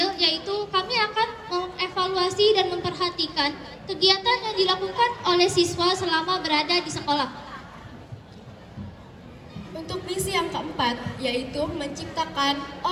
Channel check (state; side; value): identical; both; correlation 1.00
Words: yaitu kami akan mengevaluasi dan memperhatikan kegiatan yang dilakukan oleh siswa selama berada di sekolah. Untuk misi yang keempat yaitu menciptakan